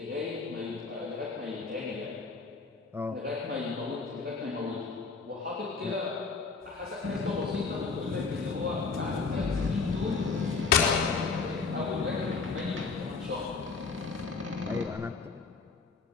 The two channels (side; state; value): right; quieter; 4.6 dB